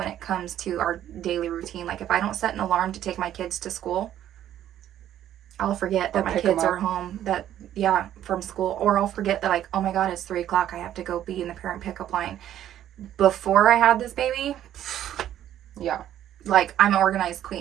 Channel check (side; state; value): left; quieter; 11.5 dB